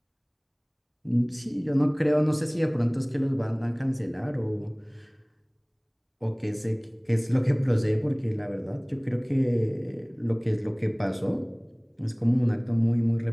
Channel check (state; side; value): identical; both; correlation 1.00